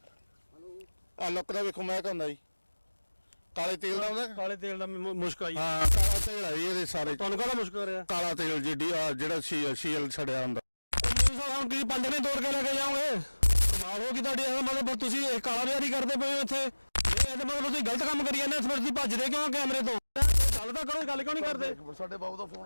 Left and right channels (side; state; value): both; inverted; correlation -1.00